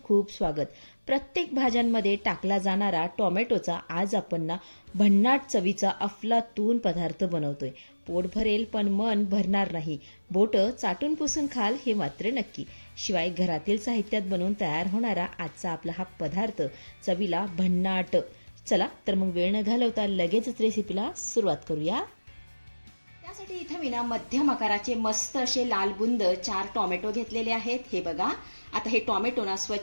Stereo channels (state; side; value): inverted; both; correlation -1.00